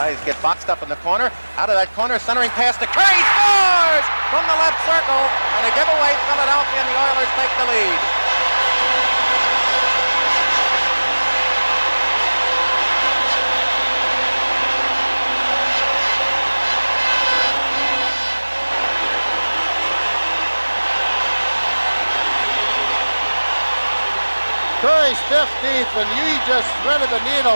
get boxed up in the corner. Out of that corner, centering pass to Curry, scores from the left circle, and a giveaway. Philadelphia, and the Oilers take the lead. Curry's 15th, and he just threaded the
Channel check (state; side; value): inverted; both; correlation -1.00